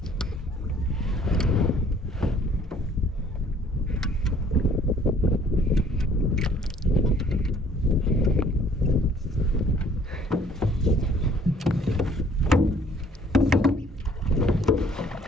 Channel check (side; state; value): both; normal; correlation 0.58